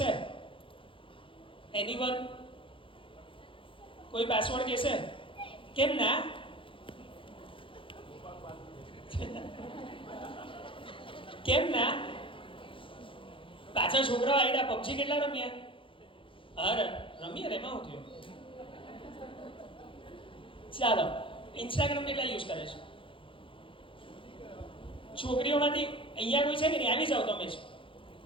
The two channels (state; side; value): late; right; 0.25 ms